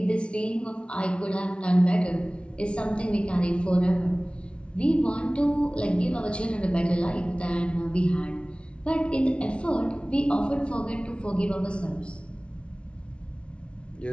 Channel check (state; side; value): late; right; 0.059 ms